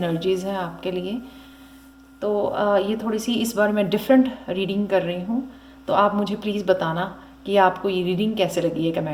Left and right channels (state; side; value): identical; both; correlation 1.00